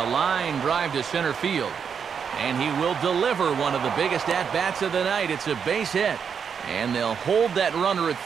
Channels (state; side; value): quieter; left; 6.9 dB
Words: line drive to center field. And he will deliver one of the biggest at-bats of the night. It's a base hit. And they'll hold that runner at